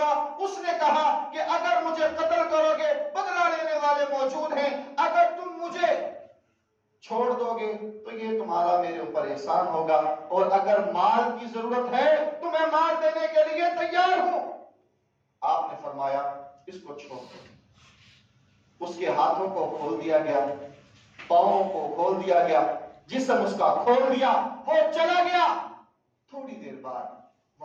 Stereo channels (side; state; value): both; identical; correlation 1.00